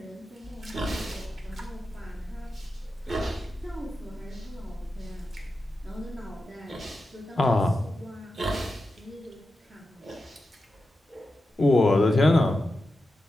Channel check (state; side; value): normal; both; correlation 0.91